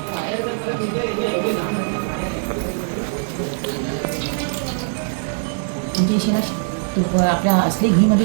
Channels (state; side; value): silent; left; digital silence